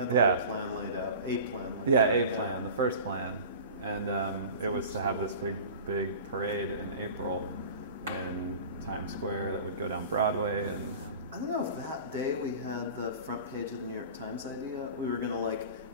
whole plan laid out, a plan. Plan, the first plan, and it was to have this big parade in April in Times Square that would go down Broadway. And I don't know if that day we had the front page of the New York Times idea. We were going to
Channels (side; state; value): both; inverted; correlation -0.38